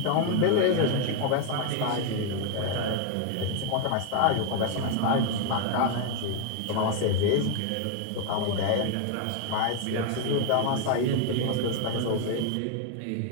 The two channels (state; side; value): different; both; correlation 0.01